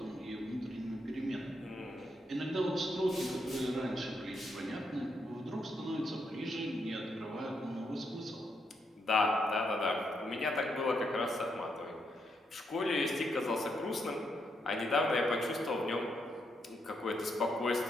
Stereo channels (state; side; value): normal; both; correlation 0.79